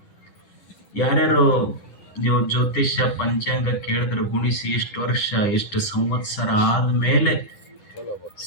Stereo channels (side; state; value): right; late; 10 ms